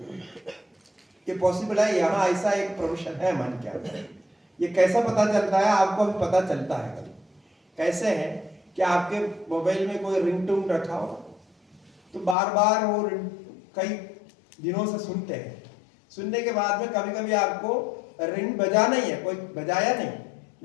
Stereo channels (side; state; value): right; drops out; at 12.4 s